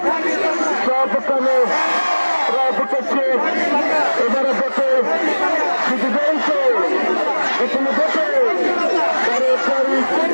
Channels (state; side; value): inverted; both; correlation -1.00